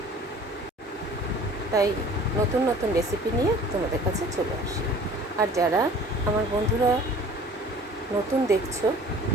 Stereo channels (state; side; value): normal; both; correlation 0.48